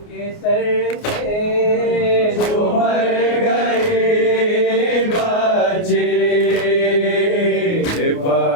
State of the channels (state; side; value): late; right; 29 ms